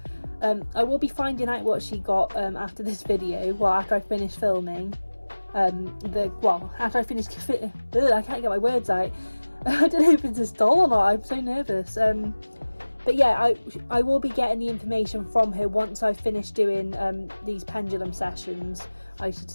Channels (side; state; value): both; inverted; correlation -1.00